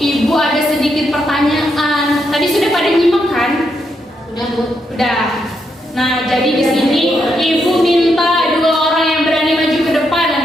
ada sedikit pertanyaan. Tadi sudah pada nyimak kan? Udah, Bu. Udah. Nah, jadi di sini Ibu minta dua orang yang berani maju ke depan.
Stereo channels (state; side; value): normal; both; correlation 0.80